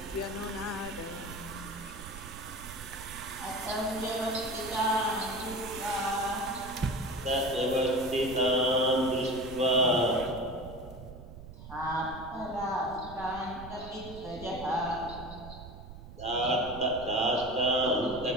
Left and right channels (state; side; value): noise; right; rumble, 14 dB below the sound